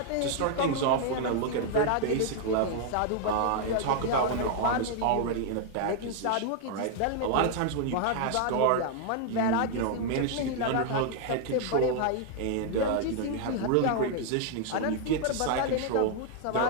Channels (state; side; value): different; both; correlation 0.00